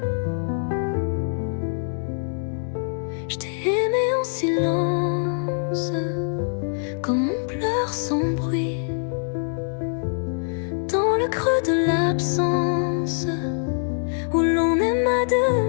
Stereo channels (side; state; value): right; silent; digital silence